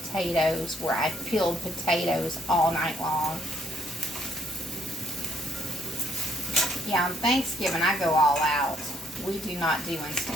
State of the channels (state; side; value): normal; both; correlation 0.69